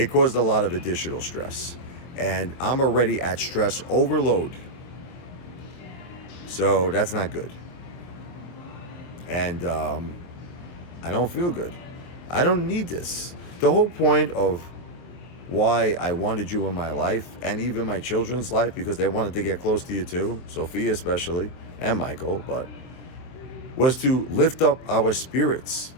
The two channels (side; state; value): right; late; 23 ms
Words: caused a lot of additional stress. And I'm already at stress overload. So that's not good. And I don't feel good. I don't need this. The whole point of why I wanted you in my life, and even my children's life, because they wanted to get close to you too, Sophia especially, and Michael, but was to lift up our spirits,